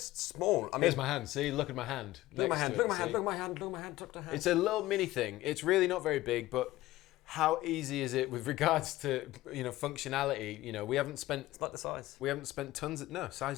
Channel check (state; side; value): quieter; right; 16.9 dB